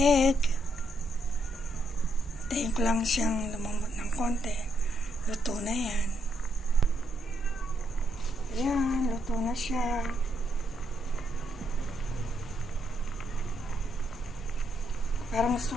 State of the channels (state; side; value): normal; both; correlation 0.77